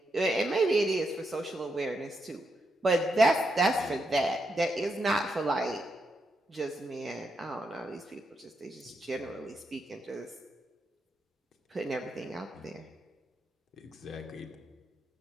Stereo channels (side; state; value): both; normal; correlation 0.82